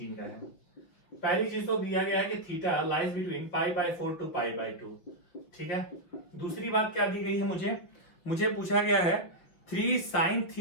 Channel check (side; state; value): right; late; 6.0 ms